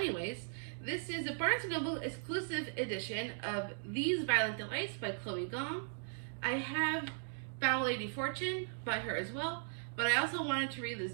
this is a Barnes & Noble exclusive edition of These Violent Delights by Chloe Gong. I have Foul Lady Fortune by her as well, but I also wanted to read this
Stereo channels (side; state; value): left; silent; digital silence